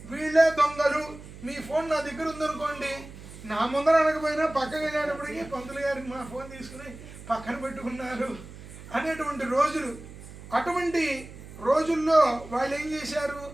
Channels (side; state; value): right; noise; hum, 15 dB below the sound